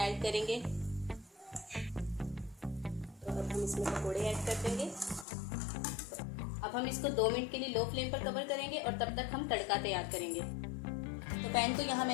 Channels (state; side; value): drops out; right; at 5.2 s